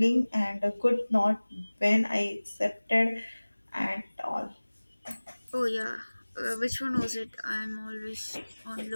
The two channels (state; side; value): inverted; both; correlation -1.00